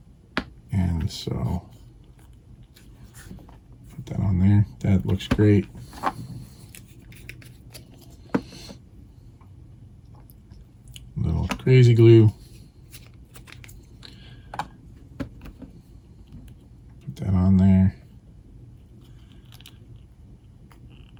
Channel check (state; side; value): identical; both; correlation 1.00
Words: And so put that on there. That looks great. Little crazy glue. Put that on there.